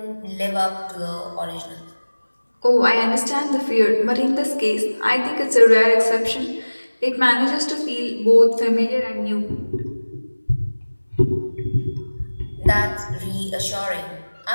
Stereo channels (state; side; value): inverted; both; correlation -1.00